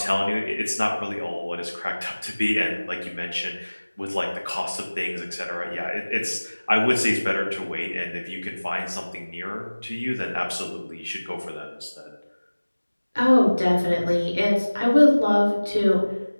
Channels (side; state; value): both; inverted; correlation -1.00